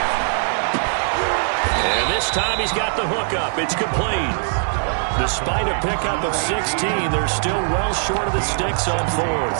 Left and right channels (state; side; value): silent; left; 62 dB below the other